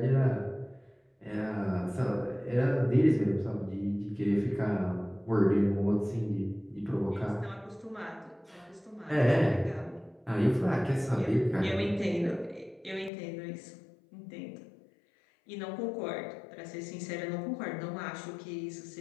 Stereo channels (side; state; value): right; drops out; at 13.1 s